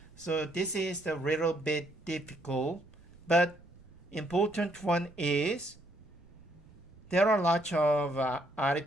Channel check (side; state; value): right; noise; rumble, 24 dB below the sound